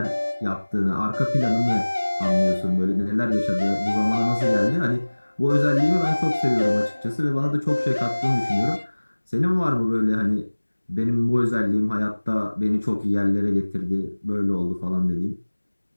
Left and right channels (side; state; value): both; inverted; correlation -1.00